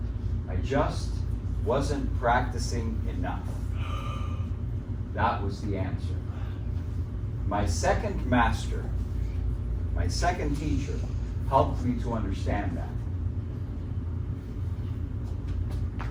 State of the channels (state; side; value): identical; both; correlation 1.00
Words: I just wasn't practicing enough. That was the answer. My second master, my second teacher, helped me to understand that.